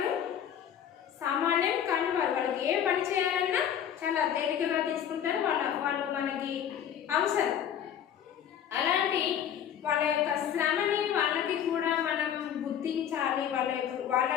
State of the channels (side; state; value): right; quieter; 9.3 dB